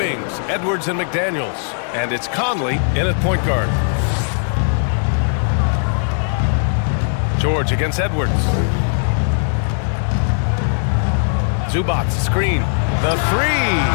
Edwards and McDaniels. And it's Conley in at point guard. George against Edwards. Zubac, screen. The 3.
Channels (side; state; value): right; silent; digital silence